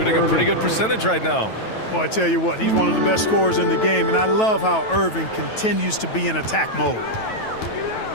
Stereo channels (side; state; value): right; late; 9.2 ms